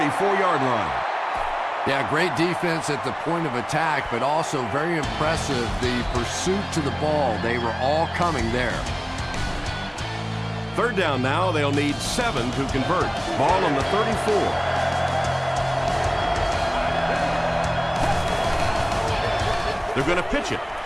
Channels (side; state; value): both; identical; correlation 1.00